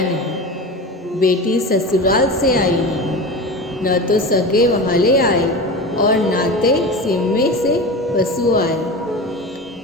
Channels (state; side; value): normal; both; correlation 0.28